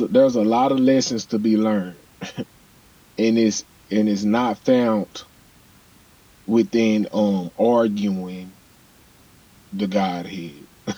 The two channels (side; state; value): both; identical; correlation 1.00